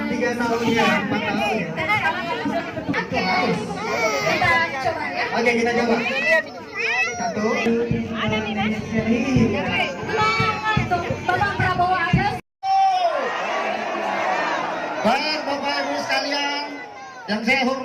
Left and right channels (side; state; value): both; identical; correlation 1.00